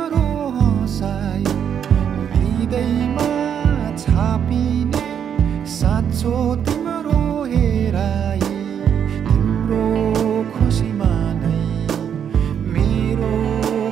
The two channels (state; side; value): quieter; left; 8.4 dB